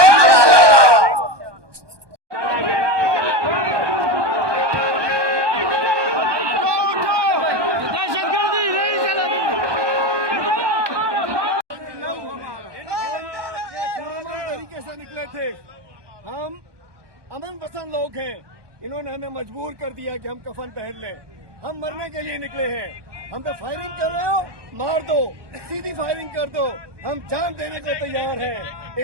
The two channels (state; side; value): late; left; 1.2 ms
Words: तरीके से निकले थे, हम अमन पसंद लोग हैं। इन्होंने हमें मजबूर कर दिया कि हम कफन पहन लें। हम मरने के लिए निकले हैं। हम पे फायरिंग कर रहे हो, मार दो, सीधी फायरिंग कर दो, हम जान देने को तैयार हैं।